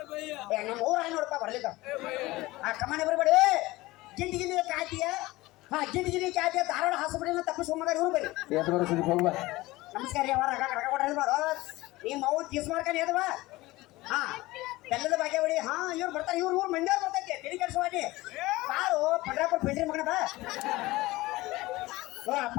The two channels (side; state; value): right; quieter; 19.5 dB